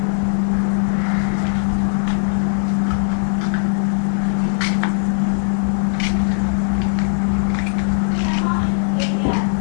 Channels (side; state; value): right; silent; 58 dB below the other